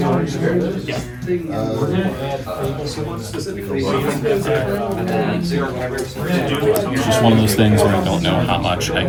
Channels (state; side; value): identical; both; correlation 1.00